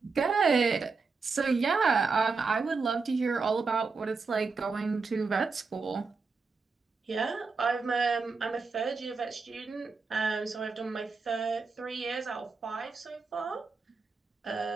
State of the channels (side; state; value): left; quieter; 4.5 dB